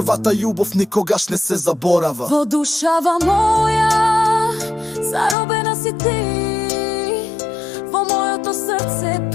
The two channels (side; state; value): right; drops out; at 5.4 s